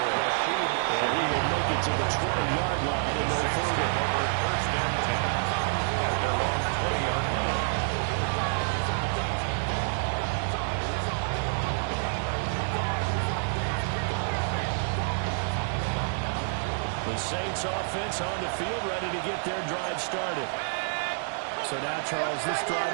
And he will make it to the 20-yard line and no further. Over first and 10 at their own 20-yard line. The Saints offense on the field, ready to get their drive started. So now, Charles, this drive,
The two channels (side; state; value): left; silent; digital silence